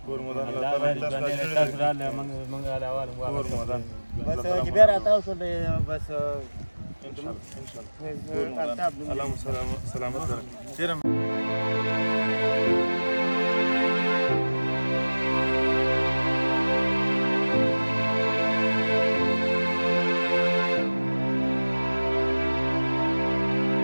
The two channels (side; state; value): both; inverted; correlation -1.00